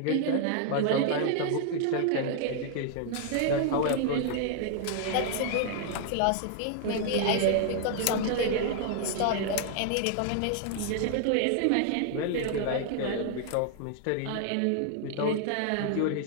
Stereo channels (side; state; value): both; different; correlation 0.00